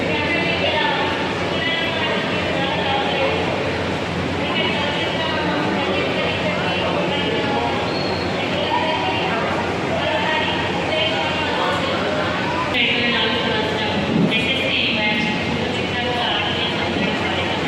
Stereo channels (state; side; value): identical; both; correlation 1.00